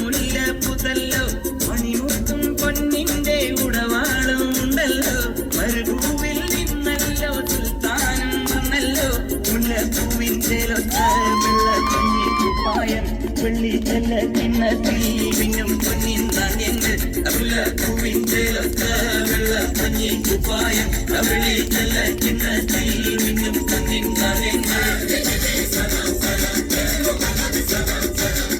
പുതല്ലോ മണിമുത്തും പൊന്നിന്റെ ഉടവാളും ഉണ്ടല്ലോ മരുഭൂവിൽ നിന്നല്ലോ സുൽത്താനം വന്നല്ലോ മുല്ലപ്പൂവിൻ ചേലൊത്ത വെള്ളക്കഞ്ഞി കുപ്പായം വെള്ളി ചെല്ല കിണ്ണത്തിൽ മിന്നും പൊന്നിൻ നാണ്യങ്ങൾ മുല്ലപ്പൂവിൻ ചേലൊത്ത വെള്ളക്കഞ്ഞി കുപ്പായം വെള്ളി ചെല്ല കിണ്ണത്തിൽ മിന്നും പൊന്നിൻ നാണ്യങ്ങൾ.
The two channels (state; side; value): identical; both; correlation 1.00